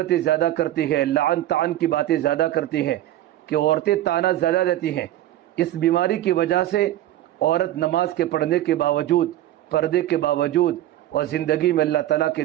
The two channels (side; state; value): left; quieter; 13.7 dB